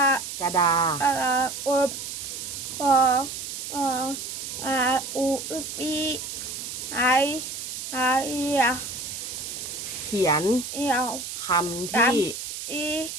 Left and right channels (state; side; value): noise; right; hiss, 7 dB below the sound